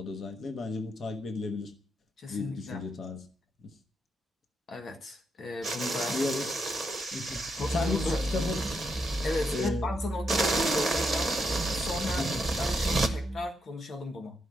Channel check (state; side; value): normal; both; correlation 0.81